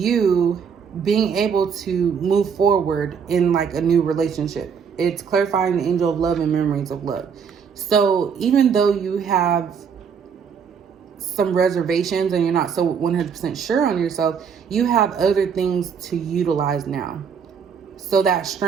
being able to move forward in like a new relationship. It's clarifying the angel of love and memories of love. So even though you have some reservations and you're not so 100% sure on yourself, you have other things to utilize now. So that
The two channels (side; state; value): left; quieter; 6.7 dB